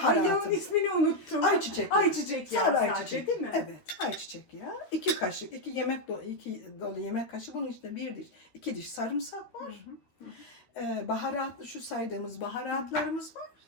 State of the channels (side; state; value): right; late; 13 ms